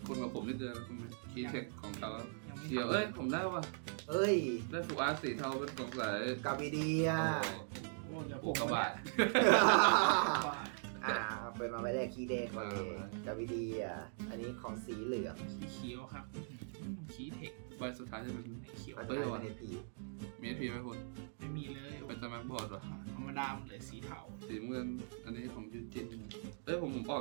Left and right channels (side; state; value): left; silent; digital silence